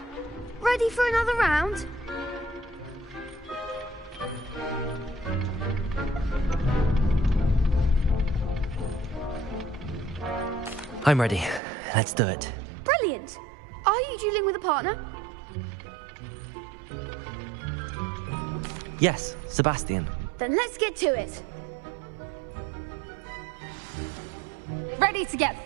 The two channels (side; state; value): left; drops out; at 11.6 s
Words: Ready for another round? I'm ready. Let's do it. Brilliant. Are you dueling with a partner? Yes, Sebastian. Then let's get to it. Ready to get